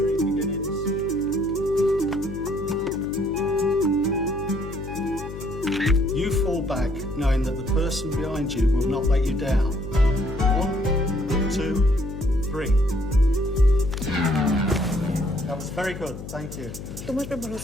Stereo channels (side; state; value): left; noise; hum, 11 dB below the sound